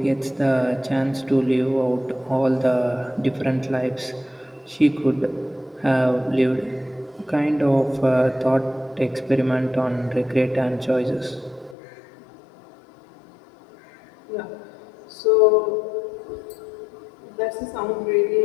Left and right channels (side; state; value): right; drops out; at 11.8 s